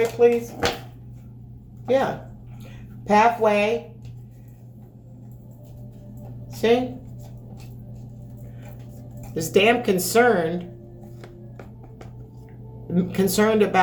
please. Yeah. Pathway. See? Is damn concerned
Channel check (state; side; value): identical; both; correlation 1.00